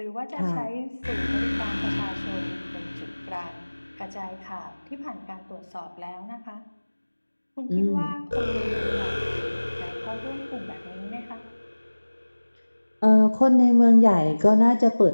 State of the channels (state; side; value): inverted; both; correlation -1.00